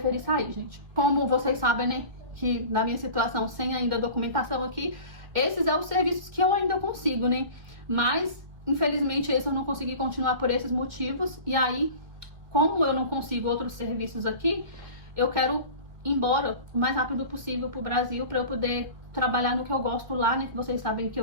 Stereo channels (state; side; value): late; left; 1.9 ms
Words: sair, gente. Como vocês sabem, né, que na minha situação, sem ainda documentação aqui, esses são os serviços que eu ainda consigo, né, mas infelizmente esse eu não consegui continuar por esses motivos. E aí, como eu não consigo outros serviços aqui, eu quero embora o mais rápido possível pro Brasil, para eu poder trabalhar no que eu gosto lá, né? Que vocês sabem que